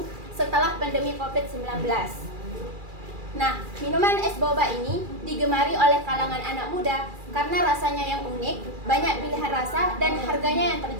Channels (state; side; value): late; left; 2.4 ms